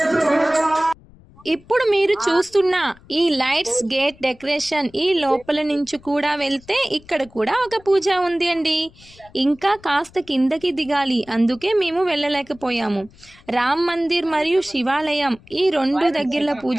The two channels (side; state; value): left; noise; rumble, 25 dB below the sound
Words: ఇప్పుడు మీరు చూస్తున్న ఈ లైట్స్ గేట్ డెకరేషన్, ఈ లోపల నుంచి కూడా వెళ్తే ఇక్కడ కూడా ఒక పూజ ఉంది అండి. ఇంకా కాస్త కిందకి దిగాలి, అందుకే మేము వెళ్ళలేకపోయాము. రామ్ మందిర్ మరియు శివాలయం ఈ రెండు దగ్గరలో